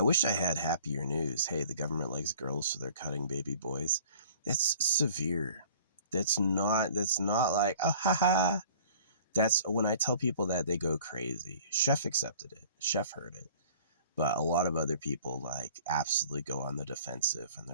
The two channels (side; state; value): both; inverted; correlation -0.49